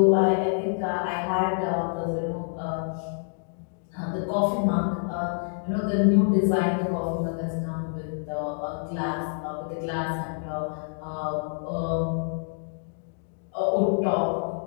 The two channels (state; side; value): silent; right; digital silence